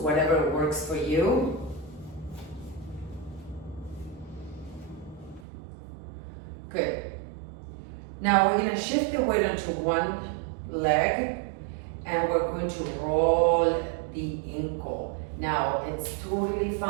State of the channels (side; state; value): left; drops out; at 5.5 s